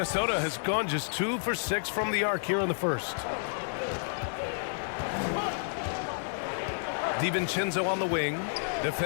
has gone just 2 for 6 from the arc here in the first. DiVincenzo on the wing,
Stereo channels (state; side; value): silent; right; 58 dB below the other